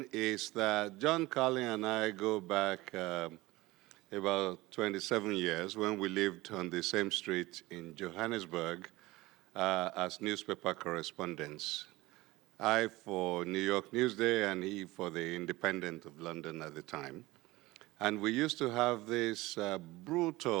is that John Carlin and I go back about 27 years when we lived on the same street in Johannesburg as newspaper correspondents. I for New York Newsday and he for the Independent of London at the time. And we used to have this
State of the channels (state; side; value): quieter; left; 19.9 dB